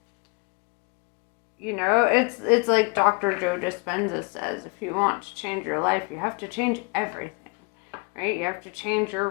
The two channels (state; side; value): quieter; right; 31.6 dB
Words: it's like Dr. Joe Dispenza says, if you want to change your life, you have to change everything, right? You have to change your